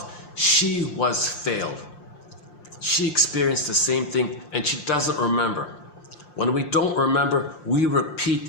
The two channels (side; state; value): right; late; 5.7 ms